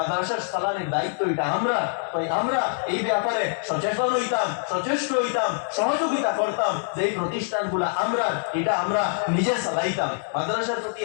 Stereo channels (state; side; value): silent; right; digital silence